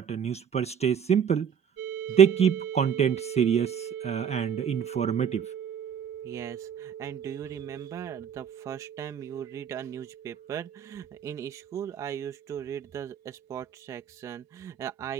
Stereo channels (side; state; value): left; quieter; 7.9 dB